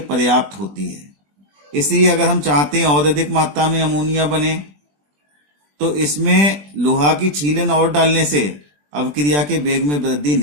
पर्याप्त होती है। इसलिए अगर हम चाहते हैं और अधिक मात्रा में अमोनिया बने, तो इसमें लोहा की छीलन और डालने से अवक्रिया के वेग में वृद्धि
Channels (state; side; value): late; left; 20 ms